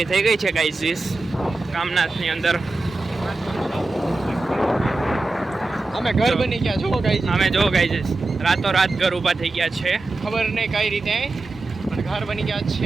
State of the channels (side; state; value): left; quieter; 3.2 dB